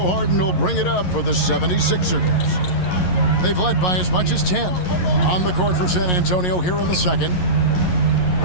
Harden will bring it up for the 76ers. They've led by as much as 10. On the court for San Antonio here in the second.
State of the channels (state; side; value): late; right; 11 ms